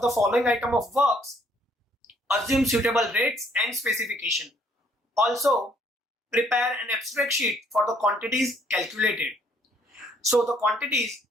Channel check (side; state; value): both; normal; correlation 0.65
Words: the following item of works. Assume suitable rates and specification. Also, prepare an abstract sheet for the quantities calculated. So the quantities